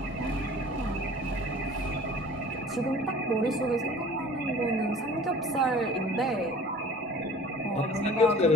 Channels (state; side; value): normal; both; correlation 0.46